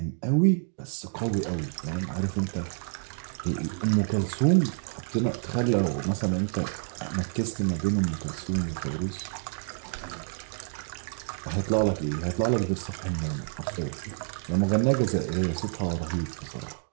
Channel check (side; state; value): left; silent; digital silence